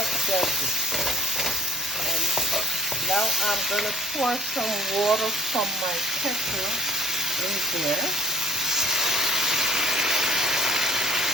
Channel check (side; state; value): both; normal; correlation 0.50